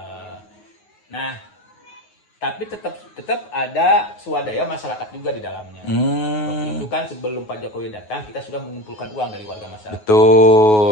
Nah, tapi tetap ada swadaya masyarakat juga di dalamnya. Waktu itu kan sebelum Pak Jokowi datang, kita sudah mengumpulkan uang dari warga masyarakat.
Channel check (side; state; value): right; late; 9.4 ms